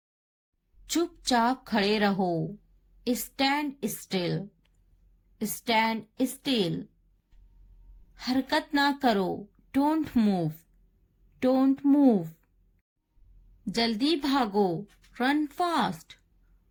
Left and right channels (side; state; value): both; identical; correlation 1.00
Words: चुपचाप खड़े रहो, स्टैंड स्टिल, स्टैंड स्टिल। हरकत ना करो, डोंट मूव, डोंट मूव। जल्दी भागो, रन फास्ट,